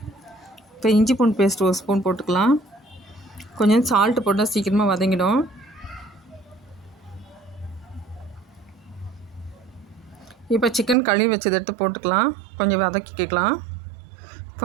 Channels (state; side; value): drops out; left; at 11.0 s